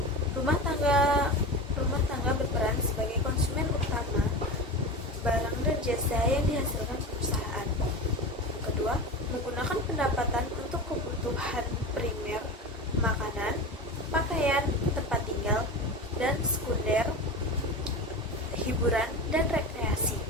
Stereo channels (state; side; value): normal; both; correlation 0.27